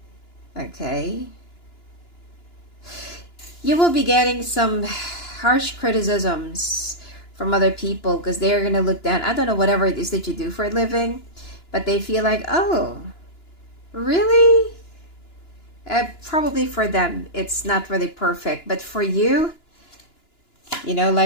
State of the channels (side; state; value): right; late; 2.9 ms